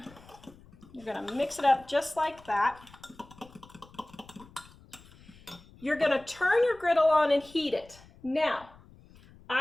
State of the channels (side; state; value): left; noise; rumble, 24 dB below the sound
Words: You're going to mix it up just like that. You're going to turn your griddle on and heat it. Now,